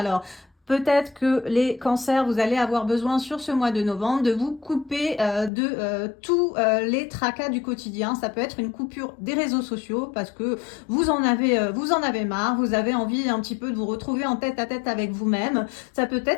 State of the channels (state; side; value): drops out; right; at 5.5 s